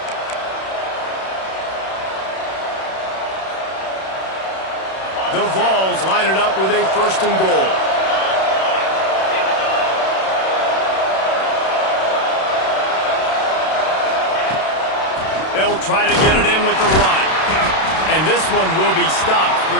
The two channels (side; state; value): right; late; 32 ms